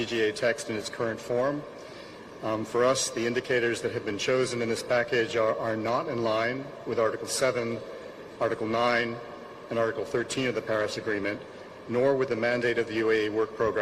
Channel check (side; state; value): both; identical; correlation 1.00